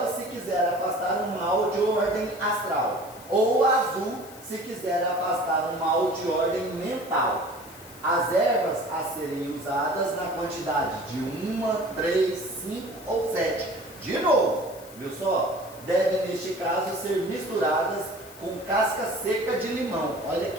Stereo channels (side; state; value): left; noise; hiss, 20 dB below the sound